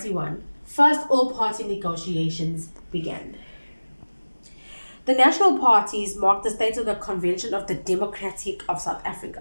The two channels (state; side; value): inverted; both; correlation -1.00